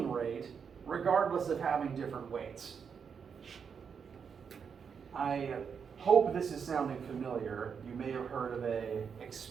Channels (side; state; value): left; quieter; 6.6 dB